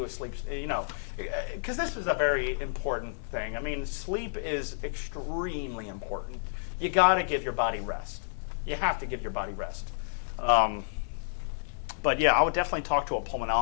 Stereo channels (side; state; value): right; silent; 58 dB below the other